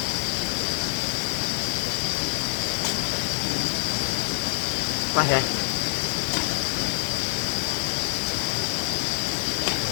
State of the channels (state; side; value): silent; right; digital silence